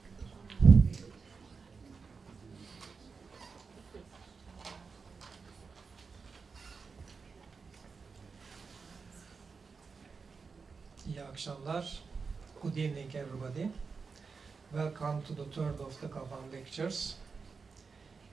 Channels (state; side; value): quieter; left; 5.0 dB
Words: akşamlar. Good evening, everybody. Welcome to the third of the GABAM Lectures.